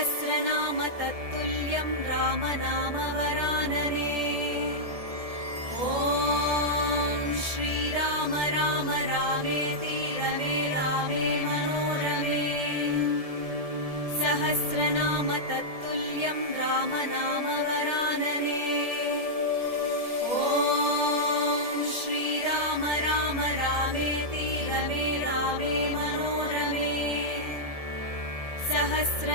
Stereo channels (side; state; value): left; late; 1.7 ms